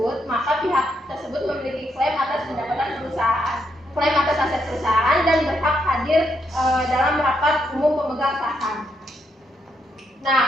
maka pihak tersebut memiliki klaim atas pendapatan perusahaan, klaim atas aset perusahaan, dan berhak hadir dalam rapat umum pemegang saham. Nah,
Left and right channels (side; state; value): both; normal; correlation 0.78